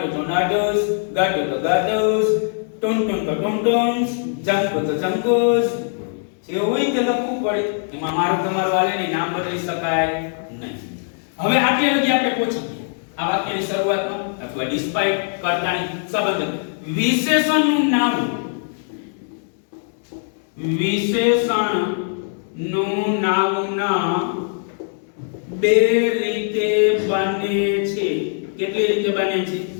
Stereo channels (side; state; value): right; silent; 65 dB below the other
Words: તો નટુસ, ગાટુ તો ગાટુસ, ટુનટુન તો ટુનટુન્સ, જંકુ તો જંકુસ. જે હોય તે લખવું પડે. એમાં મારું તમારું વાલેની નામ બદલી શકાય નહીં. હવે આટલે લગી આપણે પહોંચી ગયા આ વાક્યની શરૂઆતમાં અથવા ડિસ્પાઇટ, કર્તાની સંબંધક. વિશેષણનું નામ, વિશેષણનું નાઉન બે રીતે બને છે. કેટલી રીતે બને છે?